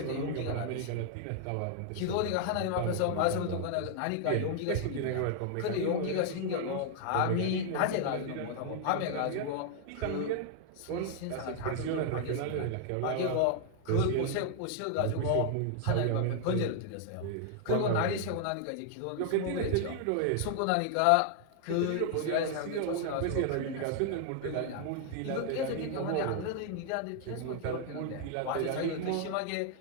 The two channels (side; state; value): both; different; correlation 0.00